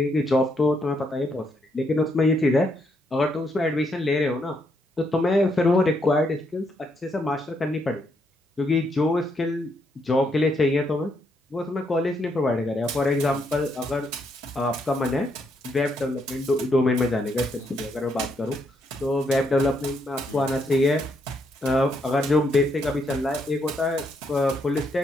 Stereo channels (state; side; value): normal; both; correlation 0.76